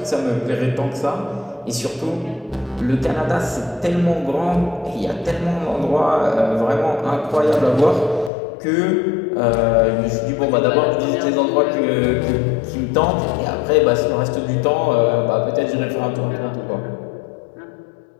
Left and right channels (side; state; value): right; drops out; at 8.3 s